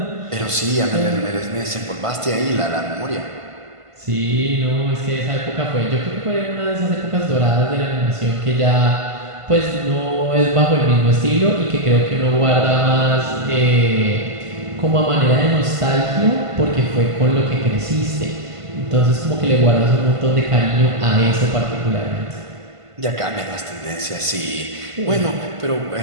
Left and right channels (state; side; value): late; left; 1.5 ms